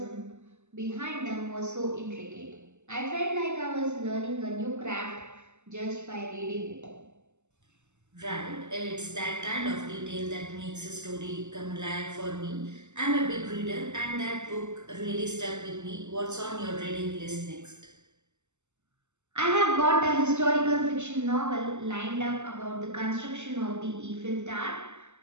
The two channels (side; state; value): left; late; 0.83 ms